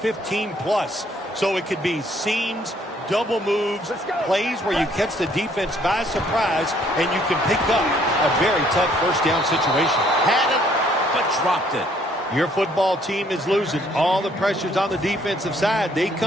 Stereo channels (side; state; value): both; normal; correlation 0.64